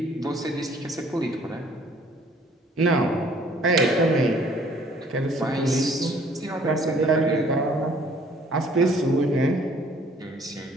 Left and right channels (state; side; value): normal; both; correlation 0.58